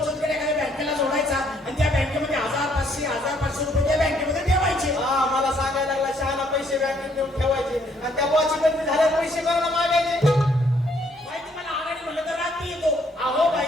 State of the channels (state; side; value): normal; both; correlation 0.67